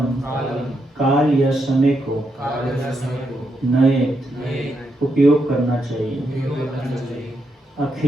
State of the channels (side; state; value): both; normal; correlation 0.81